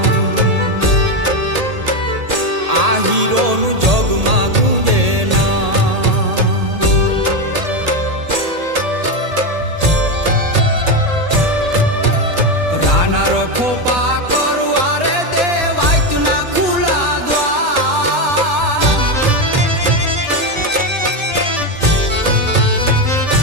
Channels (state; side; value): late; left; 1.8 ms